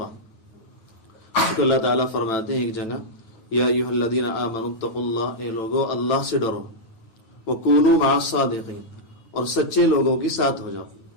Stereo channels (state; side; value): late; right; 9.0 ms